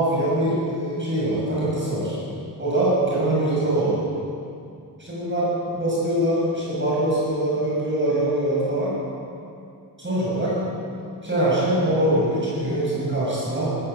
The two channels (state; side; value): normal; both; correlation 0.10